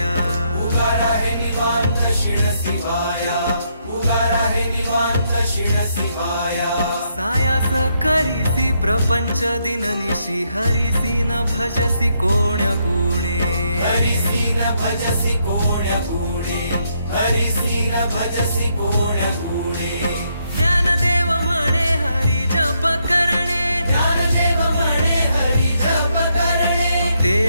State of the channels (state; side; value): inverted; both; correlation -0.76